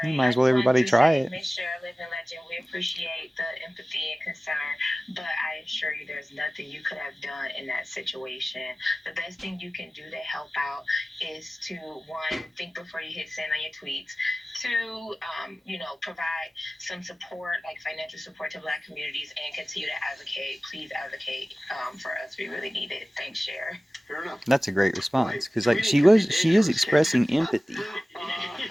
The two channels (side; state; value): both; normal; correlation 0.97